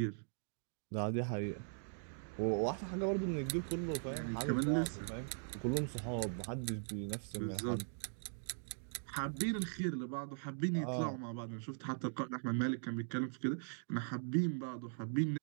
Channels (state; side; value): silent; left; digital silence